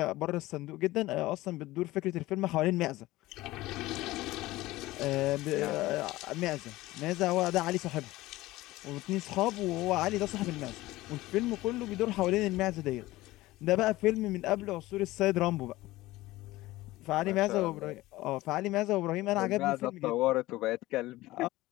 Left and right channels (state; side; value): quieter; right; 18.0 dB